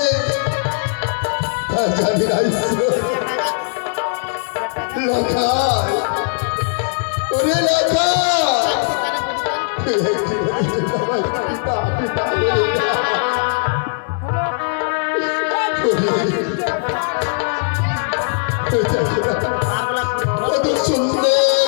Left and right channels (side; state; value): right; silent; 67 dB below the other